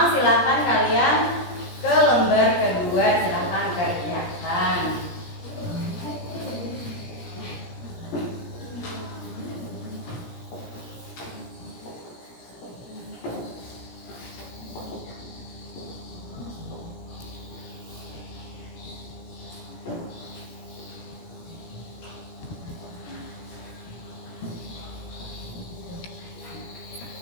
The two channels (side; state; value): right; late; 17 ms